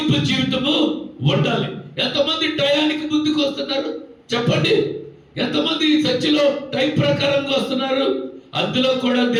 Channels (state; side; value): identical; both; correlation 1.00